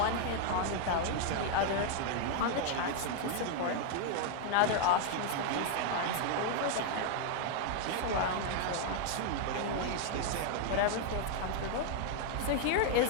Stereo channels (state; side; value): different; both; correlation 0.00